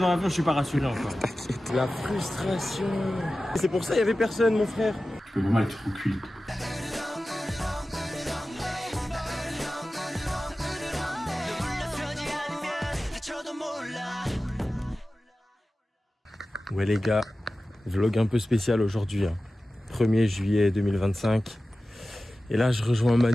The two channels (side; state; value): both; normal; correlation 0.95